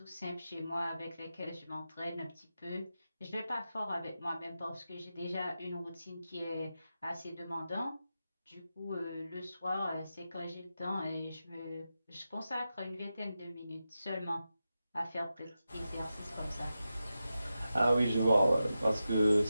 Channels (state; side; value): inverted; both; correlation -0.91